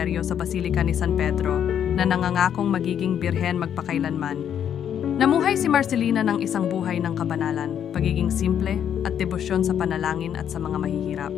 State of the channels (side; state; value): right; quieter; 9.1 dB